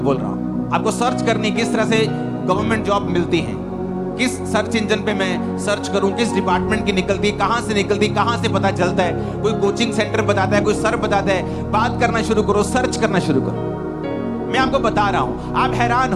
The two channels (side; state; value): both; identical; correlation 1.00